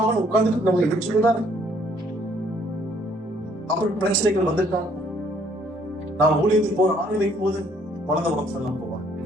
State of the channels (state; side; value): normal; both; correlation 0.63